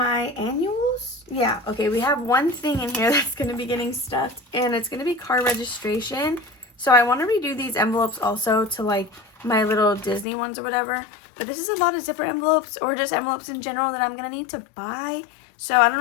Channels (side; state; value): right; drops out; at 10.2 s